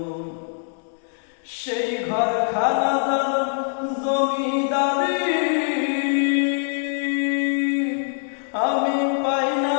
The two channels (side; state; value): right; silent; 63 dB below the other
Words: সেই ঘর খানা জমিদারি আমি পাই না